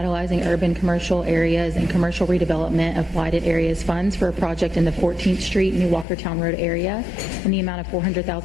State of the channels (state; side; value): drops out; right; at 6.1 s